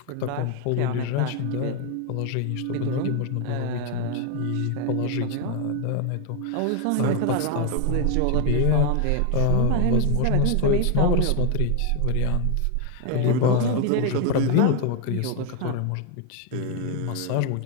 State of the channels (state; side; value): different; both; correlation 0.01